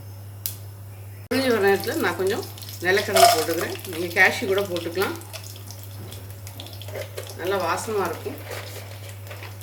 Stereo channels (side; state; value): both; identical; correlation 1.00